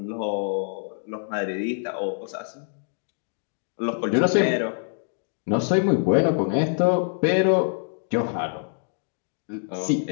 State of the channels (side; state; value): right; silent; digital silence